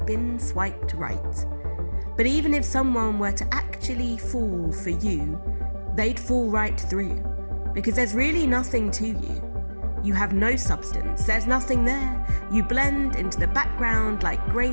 been swiped right. But even if someone were to actually fall for you, they'd fall right through, because there's really nothing to you. You have no substance, there's nothing there. You blend into the background like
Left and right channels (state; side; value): inverted; both; correlation -1.00